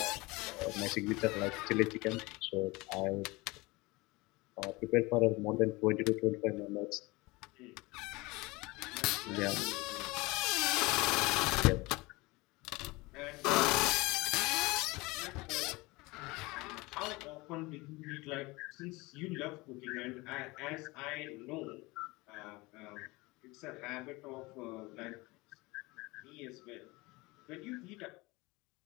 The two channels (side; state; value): right; quieter; 23.2 dB